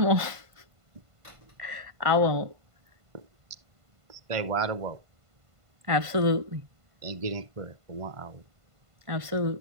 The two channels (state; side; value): late; left; 1.5 ms